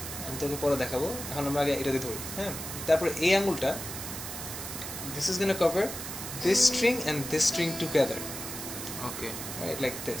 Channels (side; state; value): right; noise; hiss, 7 dB below the sound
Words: আমি তোকে পরে দেখাবো, এখন আমরা আগে এটা দিয়ে ধরি. হ্যাঁ, তারপরে এই আঙ্গুলটা this is going to cover this string and this string together, okay, right, like